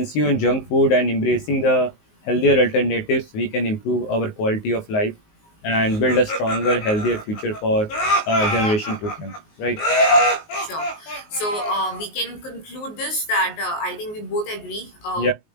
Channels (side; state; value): right; late; 19 ms